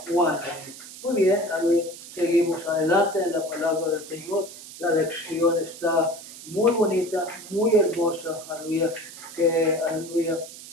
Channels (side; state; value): right; noise; hiss, 15 dB below the sound